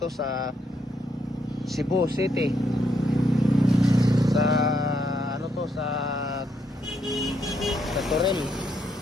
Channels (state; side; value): normal; both; correlation 0.76